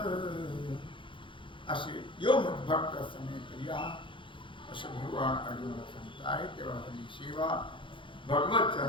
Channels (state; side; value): late; right; 0.24 ms